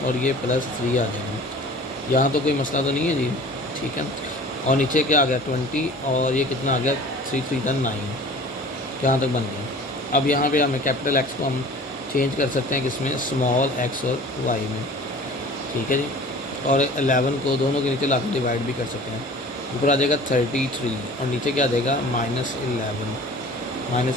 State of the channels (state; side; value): normal; both; correlation 0.44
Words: और ये +3 आ जाएगा। यहाँ तो कोई मसला तो नहीं है जी, ठीक है। और नीचे क्या आ गया 20 और ये कितना आ गया 3 3 9, यहाँ तक बन गया। अब यहाँ पे हमें कैपिटल X को हम चेंज कर सकते हैं किसमें, स्मॉल x और y में, ठीक है जी। और 11 को दोनों के नीचे ला के डिवाइड भी कर सकते हैं। ऊपर आ जाएगा 33 और नीचे क्या आ जाएगा